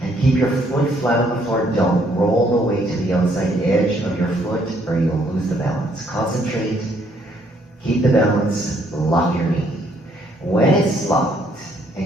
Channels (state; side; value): normal; both; correlation 0.67